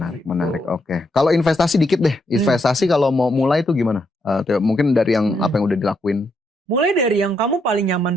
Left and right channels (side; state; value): both; normal; correlation 0.78